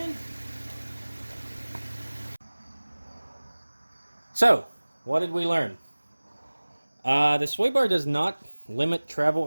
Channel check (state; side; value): inverted; both; correlation -1.00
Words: So, what did we learn? The sway bar does not limit travel